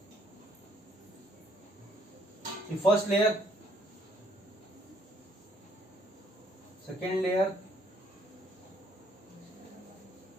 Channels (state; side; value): normal; both; correlation 0.66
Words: फर्स्ट लेयर, सेकेंड लेयर,